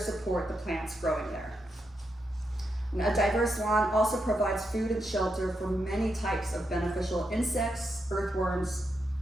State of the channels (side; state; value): both; normal; correlation 0.83